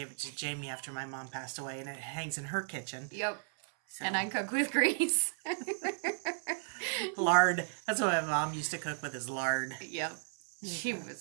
it to Jamie after my mom passed away, and it hangs in her kitchen. Yep. So. And I cook with grease. Lard. That's what my mom used to cook with, is lard. Yep. She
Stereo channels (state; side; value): silent; left; 55 dB below the other